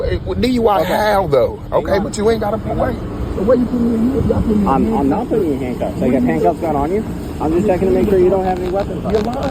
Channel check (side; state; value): both; identical; correlation 1.00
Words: how though? Okay, but you ain't got to put away. The way you put me in here, I'm not putting you in handcuffs. I got handcuffs gun on you. I'm just checking to make sure you don't have any weapons on you. You're